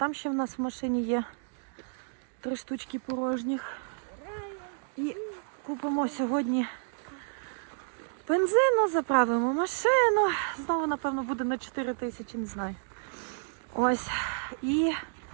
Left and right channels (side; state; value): left; silent; digital silence